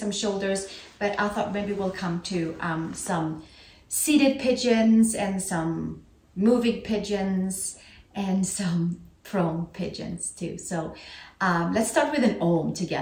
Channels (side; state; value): both; identical; correlation 1.00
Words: shoulders, but I thought maybe we'll come to some seated pigeons and some moving pigeons and some prone pigeons too. So let's start with an Om